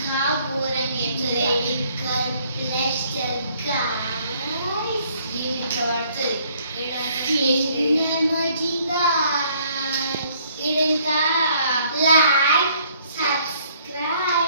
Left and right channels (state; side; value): inverted; both; correlation -0.63